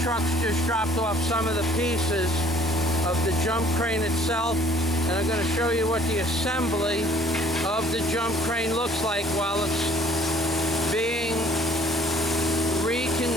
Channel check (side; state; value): both; normal; correlation 0.57